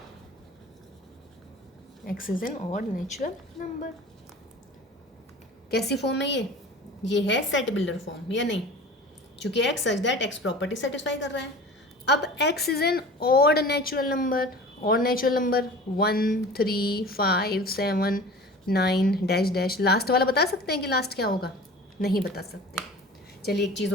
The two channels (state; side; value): normal; both; correlation 0.40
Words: x is an odd natural number. कैसी फॉर्म है ये है सेट बिल्डर फॉर्म या नहीं, क्योंकि x such that x property satisfy कर रहा है। अब x is an odd natural number, odd natural number 1 3 5 7 9 dash dash, last वाला बता सकते हैं कि लास्ट क्या होगा? नहीं बता सकते। चलिए एक चीज़